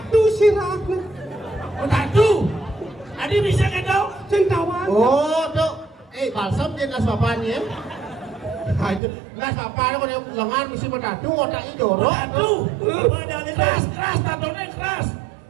sirah. Tadu. Adi bisa kan kau? Centawang. Oh, tu. Balsam dia nas bapaknya. Nas bapaknya kalau lengan mesti bertatu, otaknya jorok. Tadu. Keras, tatunya keras.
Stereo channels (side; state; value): left; drops out; at 9.0 s